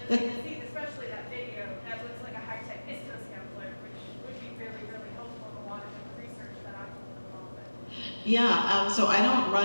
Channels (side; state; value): both; inverted; correlation -1.00